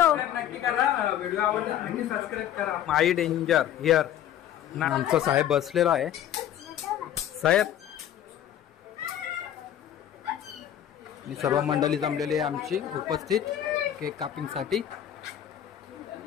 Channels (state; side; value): quieter; right; 11.0 dB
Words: माई डेंजर हिअर. आमचा साहेब बसलेला आहे. साहेब आणि सर्व मंडळी जमलेली आहे आमची उपस्थित केक कापिंग साठी.